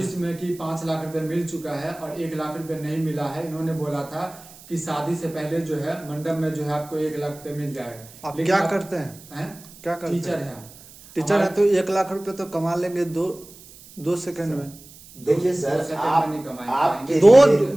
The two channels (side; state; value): right; noise; hiss, 21 dB below the sound